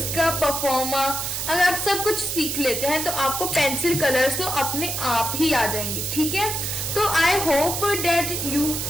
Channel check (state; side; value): noise; right; hiss, 2 dB below the sound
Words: परफॉर्मा, अगर आप सब कुछ सीख लेते हैं तो आपको पेंसिल कलर्स तो अपने आप ही आ जाएंगे, ठीक है। तो I hope that you